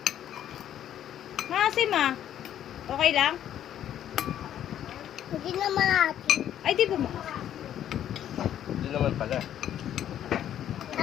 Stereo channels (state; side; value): quieter; right; 10.7 dB